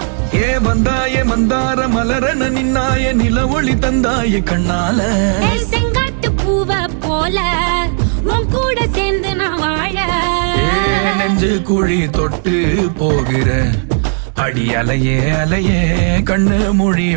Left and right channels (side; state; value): left; silent; 56 dB below the other